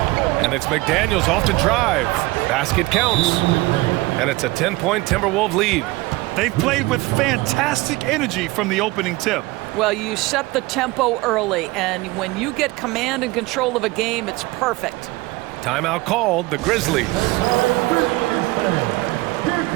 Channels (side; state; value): left; quieter; 21.2 dB